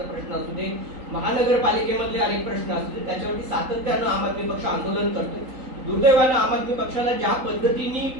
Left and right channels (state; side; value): late; left; 3.8 ms